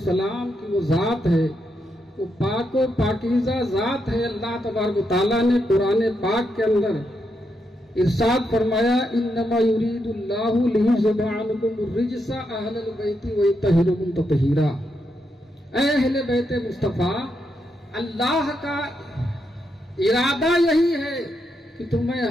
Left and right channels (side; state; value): both; normal; correlation 0.82